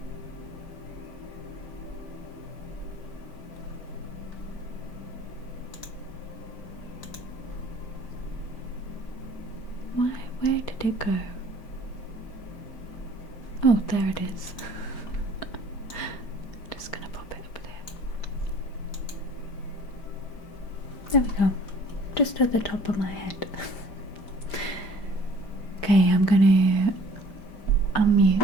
Why? Where did it go? Oh, there it is. Just gonna pop it up there. There we go. Just at the top of my head. Okay, I'm gonna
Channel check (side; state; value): right; late; 5.1 ms